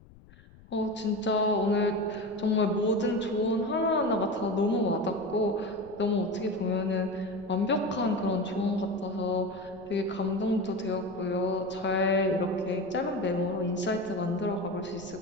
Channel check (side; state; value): left; noise; rumble, 24 dB below the sound